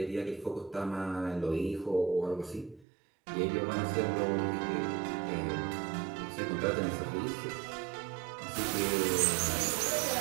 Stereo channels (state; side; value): drops out; left; at 2.9 s